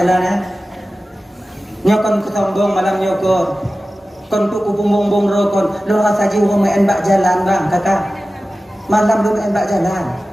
ya nyokon kesombong malam nyokon kon tu ku bumbung rokon lo saji urang main bak jalan bang kakak malam lo main bak jalan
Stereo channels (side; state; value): both; normal; correlation 0.95